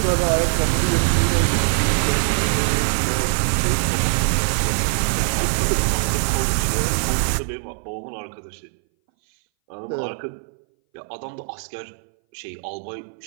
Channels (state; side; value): silent; left; 61 dB below the other